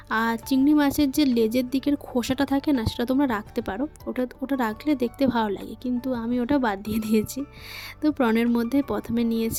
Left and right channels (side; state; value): both; identical; correlation 1.00